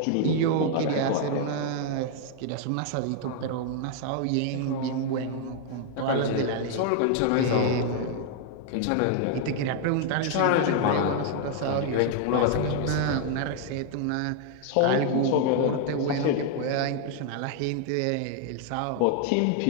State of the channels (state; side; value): different; both; correlation 0.00